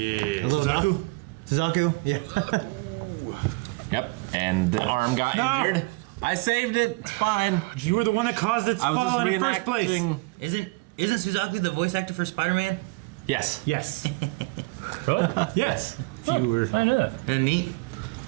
A little Suzaku. Yeah. Yep, and the arm got No. injured. I saved it. It's fine. You were the one that caused its I was fall just in the first place. reenacting- Isn't Suzaku the voice actor for Spider-Man? Yes. Yes. Really? Yes. If you were. I know that. And neat.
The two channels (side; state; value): left; quieter; 25.9 dB